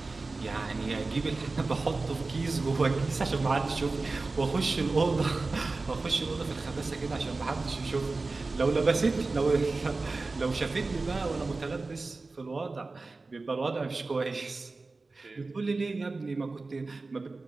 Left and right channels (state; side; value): quieter; left; 3.6 dB